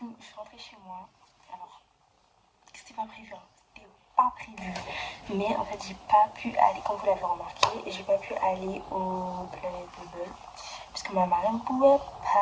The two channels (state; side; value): identical; both; correlation 1.00